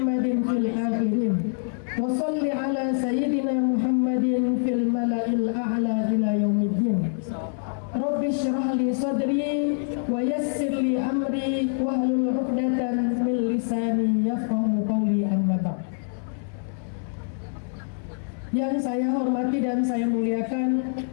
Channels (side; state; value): right; silent; 62 dB below the other